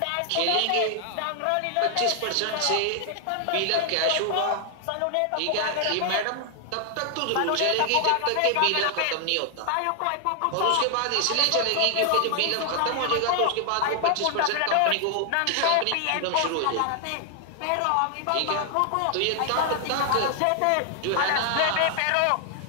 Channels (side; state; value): both; different; correlation 0.00